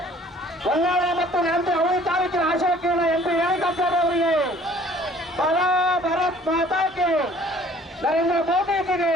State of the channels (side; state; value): both; normal; correlation 0.54